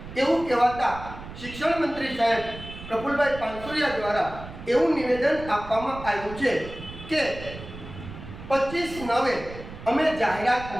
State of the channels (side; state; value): right; noise; rumble, 13 dB below the sound